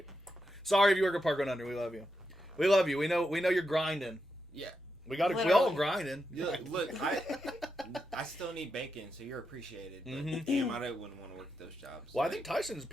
Sorry if you work at Park 100. We love you. We love you. We know you're grinding. Yeah. We all Literally. grinding. Look, I still need bacon, so you're appreciated. But Mhm. damn, I wouldn't want to work at those jobs. Well, I think Tyson's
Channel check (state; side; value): normal; both; correlation 0.86